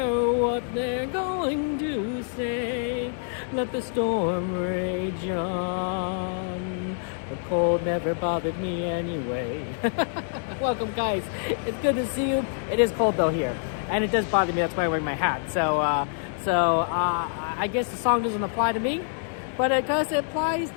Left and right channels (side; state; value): right; silent; 61 dB below the other